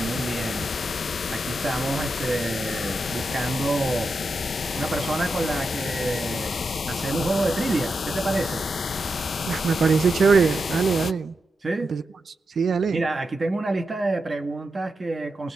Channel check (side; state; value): both; normal; correlation 0.87